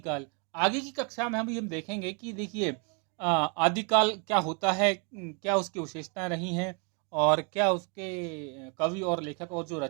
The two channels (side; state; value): left; quieter; 34.4 dB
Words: आगे की कक्षा में हम देखेंगे कि देखिए, आदिकाल क्या होता है, क्या उसकी विशेषताएं रही हैं और क्या उसके कवि और लेखक और जो